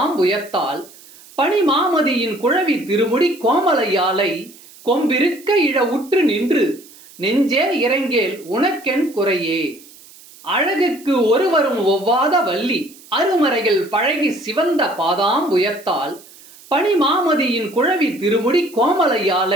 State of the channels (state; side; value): noise; right; hiss, 22 dB below the sound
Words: பனிமாமதியின் குழவி திருமுடி கோமலையாலை கொம்பிருக்க இழ உற்று நின்று நெஞ்சே இறங்கேல் உனக்கென் குறையே. அழகுக்கு ஒருவரும் ஒவ்வாத வள்ளி அருமறைகள் பழகி சிவந்த பாதாம்புயத்தால் பனிமாமதியின் குழவி திருமுடி